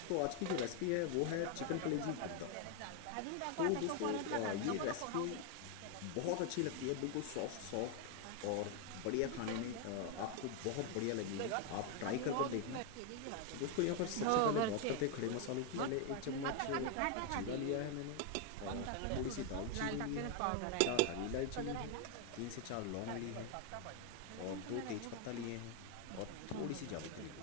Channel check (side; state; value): both; different; correlation 0.01